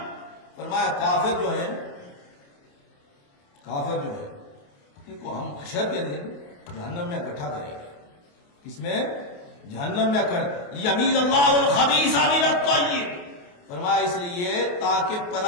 فرمایا کافر جو ہے ان کو ہم حشر کے دن جہنم میں اکٹھا کریں گے، کس میں، جہنم میں لیمیز اللہ الخبیث من الطیب، فرمایا اس لیے تاکہ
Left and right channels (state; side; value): late; right; 28 ms